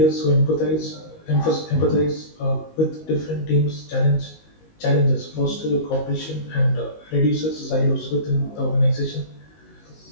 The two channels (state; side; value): late; right; 19 ms